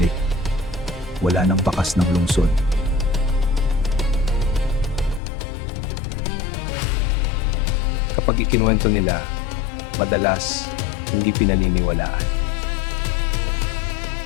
wala nang bakas ng lungsod. Kapag ikinuwento nila, madalas hindi pinaniniwalaan.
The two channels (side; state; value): right; drops out; at 5.2 s